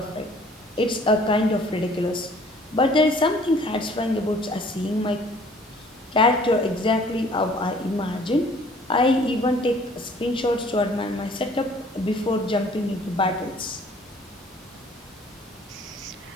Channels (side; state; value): both; normal; correlation 0.55